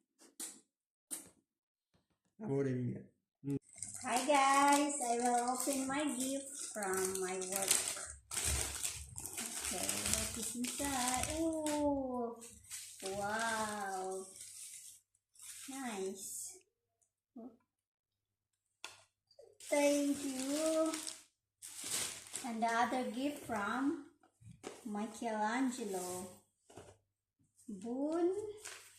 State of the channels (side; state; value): both; identical; correlation 1.00